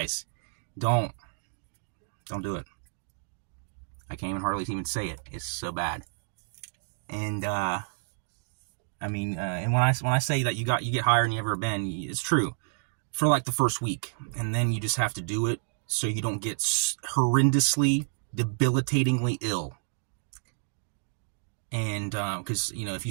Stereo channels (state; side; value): silent; left; digital silence